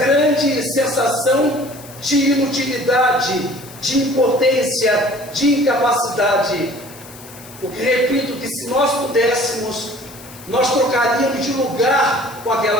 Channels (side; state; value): left; noise; hiss, 19 dB below the sound